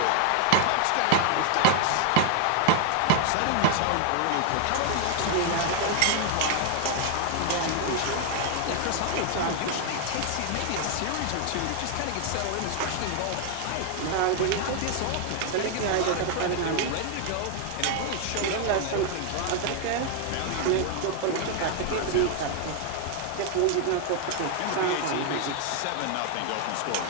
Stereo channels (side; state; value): both; different; correlation 0.00